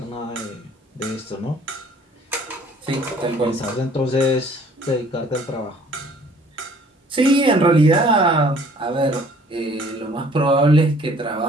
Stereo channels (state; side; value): normal; both; correlation 0.55